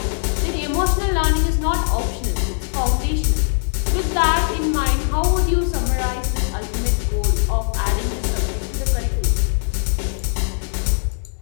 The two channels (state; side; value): silent; right; digital silence